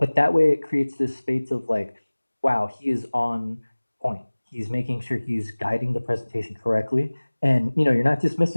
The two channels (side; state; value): both; inverted; correlation -1.00